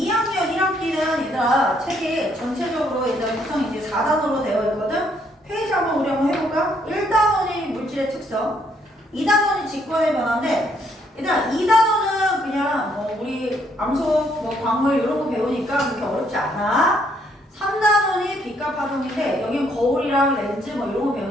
1학기는 얘들아, 책이 전체적으로 얘들아 구성이 이제 4단원으로 되어 있거든? 페이지 한번 우리 한번 해볼까? 1단원이 물질의 특성, 2단원이 직관의 변화인데, 얘들아, 2단원은 그냥 뭐 우리 암석, 뭐 광물 이런 거 배우니까 그렇게 어렵지 않아. 3단원이 빛과 파동인데, 여기는 거울이랑 렌즈 뭐 이런 거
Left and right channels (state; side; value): normal; both; correlation 0.69